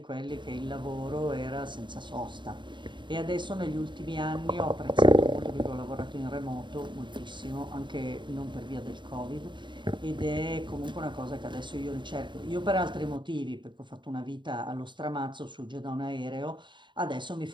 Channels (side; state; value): left; late; 0.23 ms